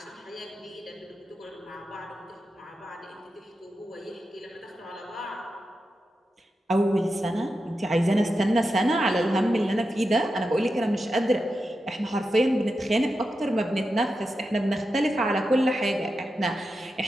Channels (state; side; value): normal; both; correlation 0.89